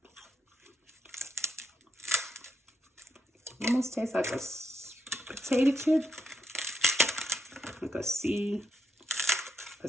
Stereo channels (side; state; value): both; normal; correlation 0.80